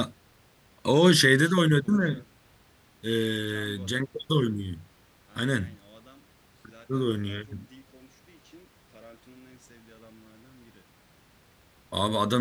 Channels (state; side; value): identical; both; correlation 1.00